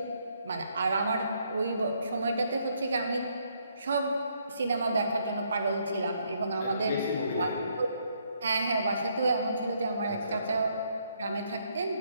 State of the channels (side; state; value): both; inverted; correlation -0.72